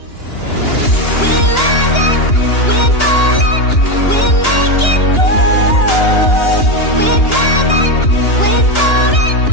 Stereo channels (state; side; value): late; right; 2.9 ms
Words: We're rising, we're falling, we're making moves. We're climbing, we're soaring,